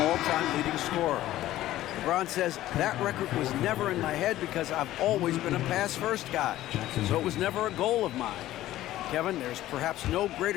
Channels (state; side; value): quieter; right; 14.6 dB